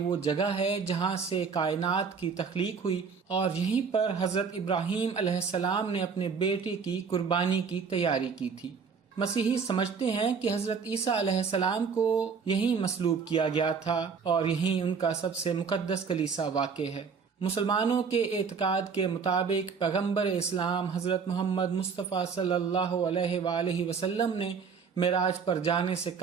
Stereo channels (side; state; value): left; quieter; 5.8 dB